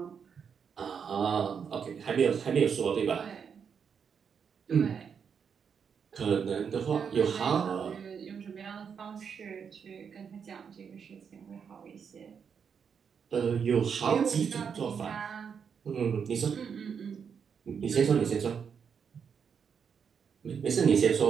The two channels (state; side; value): quieter; left; 6.8 dB